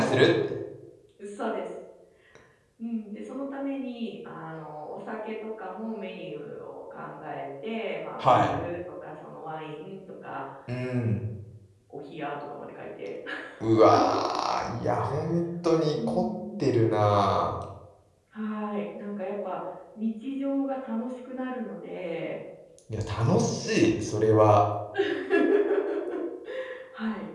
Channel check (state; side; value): identical; both; correlation 1.00